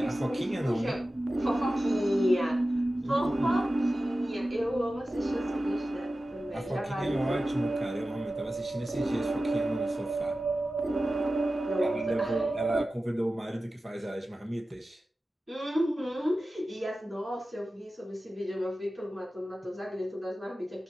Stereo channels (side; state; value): both; normal; correlation 0.94